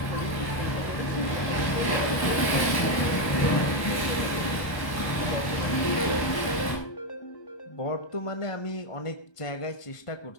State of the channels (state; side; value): late; right; 1.2 ms